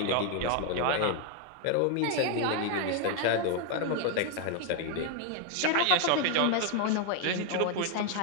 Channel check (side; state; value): both; different; correlation 0.01